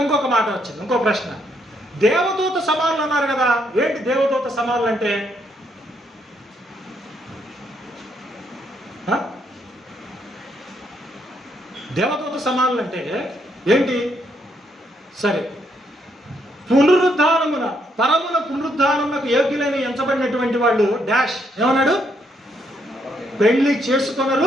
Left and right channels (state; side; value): normal; both; correlation 0.74